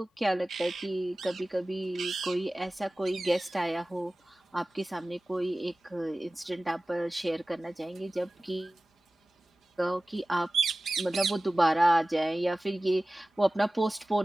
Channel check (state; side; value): normal; both; correlation 0.97